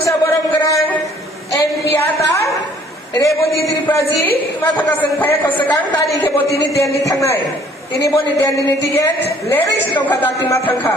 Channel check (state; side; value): normal; both; correlation 0.58